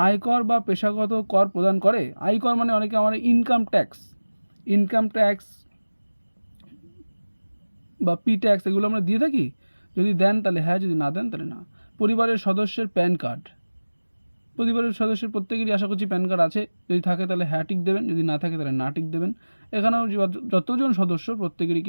আয়কর বা পেশাগত কর প্রদান করে? আয়কর মানে অনেকে আমার ইনকাম ট্যাক্স বা পি ট্যাক্স এগুলো আমরা দিয়ে থাকি। যদি দেন তাহলে হ্যাঁ, যদি না দেন তাহলে না। পরিবারের সদস্যের প্যান কার্ড, পরিবারের সদস্যের প্রত্যেকেরই আশা করছি প্যান কার্ড আছে। যদি থাকে তাহলে হ্যাঁ টিক দেবেন, যদি না থাকে তাহলে না টিক দেবেন। এখানেও যতজন সদস্য প্রত্যেকেরই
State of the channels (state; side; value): inverted; both; correlation -1.00